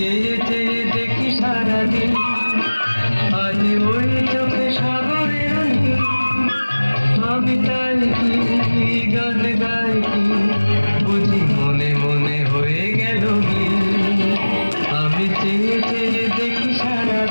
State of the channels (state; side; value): inverted; both; correlation -1.00